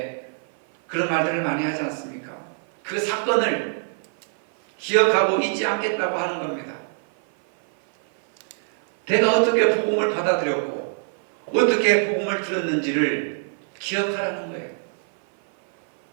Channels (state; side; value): silent; left; 57 dB below the other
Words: 그런 말들을 많이 하지 않습니까? 그 사건을 기억하고 잊지 않겠다고 하는 겁니다. 내가 어떻게 복음을 받아들였고 어떻게 복음을 들었는지를 기억하라는 거예요.